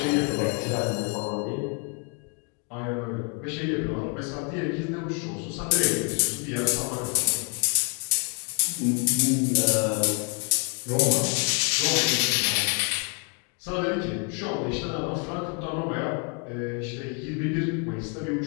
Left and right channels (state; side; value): quieter; right; 36.1 dB